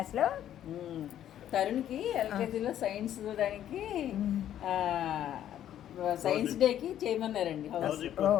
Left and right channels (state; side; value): quieter; right; 11.1 dB